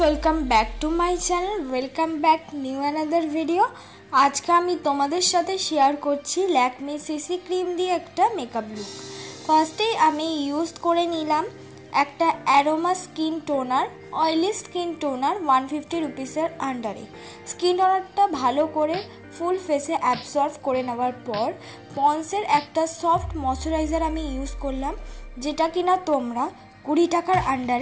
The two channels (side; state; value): both; identical; correlation 1.00